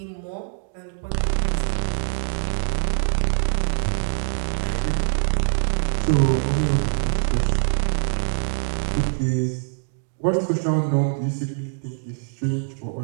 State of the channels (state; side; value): silent; left; digital silence